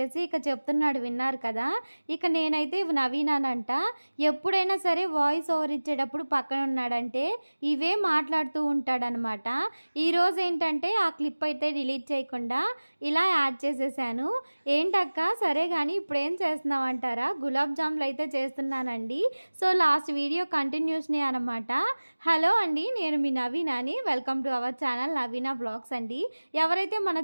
ఇక చెప్తున్నాడు, విన్నారు కదా. ఇక నేనైతే నవీనానంట. ఎప్పుడైనా సరే వాయిస్ ఓవర్ ఇచ్చేటప్పుడు పక్కన ఉన్నాడంటే ఇవే మాట్లాడుతూ ఉంటాడనమాట. ఈరోజు ఏంటంటే ఆ క్లిప్ అయితే డిలీట్ చేయకుండా ఇలా యాడ్ చేసేసాను. ఏంటక్క సరే కానీ ఇప్పుడు ఏం చేస్తున్నావు అంటారా, గులాబ్ జాములు అయితే చేస్తున్నానండి. సో లాస్ట్ వీడియో కంటిన్యూస్నే అనమాట. హలో అండి, నేను మీ నవీనాని. Welcome to our channel Naveena blogs అండి. ఎవరైతే మన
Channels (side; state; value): both; inverted; correlation -1.00